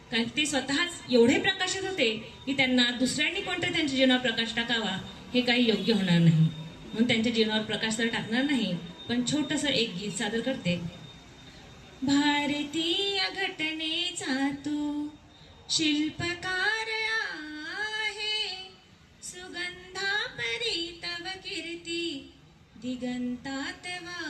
कारण ते स्वतःच एवढे प्रकाशित होते की त्यांना दुसऱ्यांनी कोणतरी त्यांच्या जीवनावर प्रकाश टाकावा हे काही योग्य होणार नाही. म्हणून त्यांच्या जीवनावर प्रकाश तर टाकणार नाही, पण छोटंसं एक गीत सादर करते. भारतीय घटनेचा तू शिल्पकार आहे, सुगंधा परी तव कीर्ती दिगंतात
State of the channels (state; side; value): identical; both; correlation 1.00